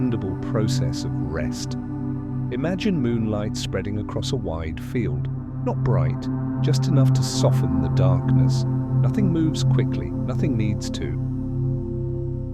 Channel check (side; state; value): both; identical; correlation 1.00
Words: process of rest. Imagine moonlight spreading across a wide field, not bright, just enough to soften the darkness. Nothing moves quickly, nothing needs to.